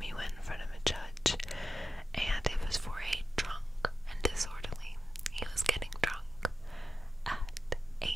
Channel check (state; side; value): normal; both; correlation 0.91